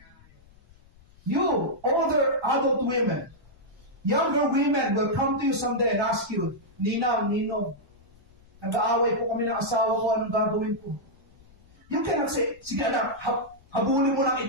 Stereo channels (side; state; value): left; noise; rumble, 27 dB below the sound